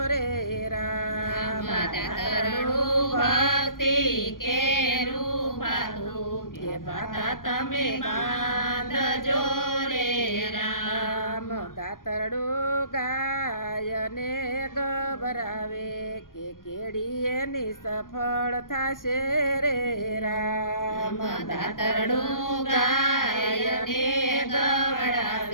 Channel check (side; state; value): right; late; 0.90 ms